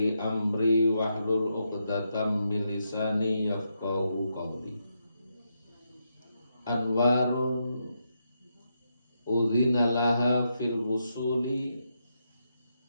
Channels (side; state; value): both; inverted; correlation -0.82